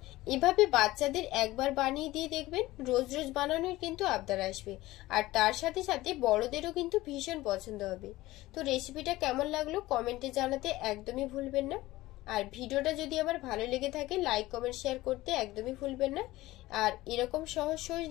এভাবে বাচ্চাদের একবার বানিয়ে দিয়ে দেখবেন, রোজ রোজ বানানোর কিন্তু আবদার আসবে, আর তার সাথে সাথে বড়দেরও কিন্তু ভীষণ পছন্দ হবে। তো রেসিপিটা কেমন লাগলো কমেন্টে জানাতে একদমই ভুলবেন না। আর ভিডিওটা যদি আমার ভালো লেগে থাকে লাইক কমেন্ট শেয়ার করতে একদমই ভুলবেন না। আর এরকম সহজ সহজ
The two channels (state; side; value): quieter; right; 17.9 dB